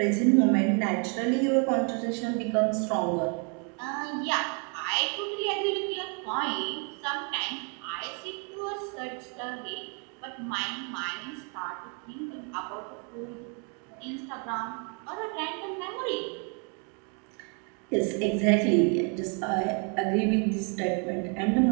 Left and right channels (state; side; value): quieter; left; 37.8 dB